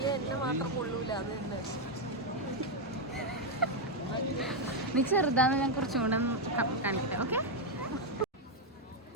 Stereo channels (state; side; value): normal; both; correlation 0.02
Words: എന്നെ മാത്രം കൊള്ളൂല. അത് തന്നെ നീ ചെറുതാന്ന് ഞാൻ കുറച്ചും കൂടെ കാണിക്കട്ടെ. ഓക്കെ,